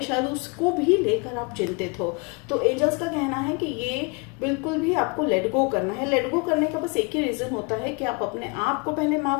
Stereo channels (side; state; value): right; quieter; 31.8 dB